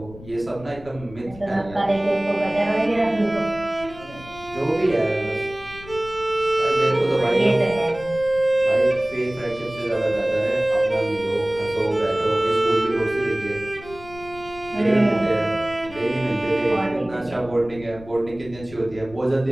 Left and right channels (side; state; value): left; noise; rumble, 18 dB below the sound